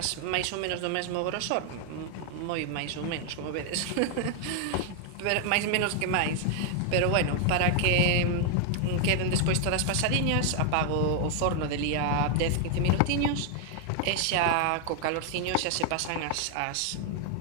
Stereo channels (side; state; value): both; different; correlation 0.00